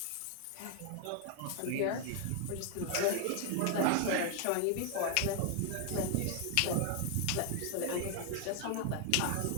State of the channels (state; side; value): different; both; correlation 0.00